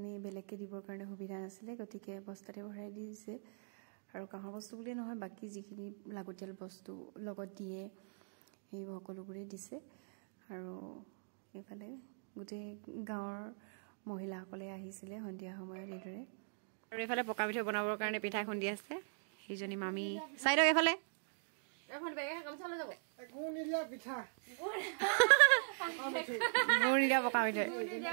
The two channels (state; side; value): silent; left; digital silence